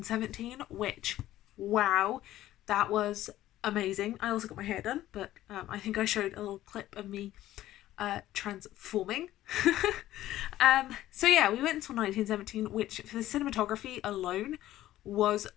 which, wow, that was amazing. I also got my hair done, but I think I showed a little clip of me transforming. We went until 1917, which for the cinematography alone was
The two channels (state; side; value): quieter; right; 14.3 dB